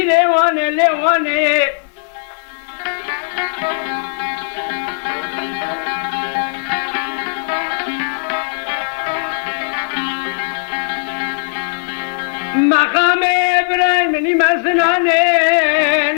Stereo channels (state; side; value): silent; right; 59 dB below the other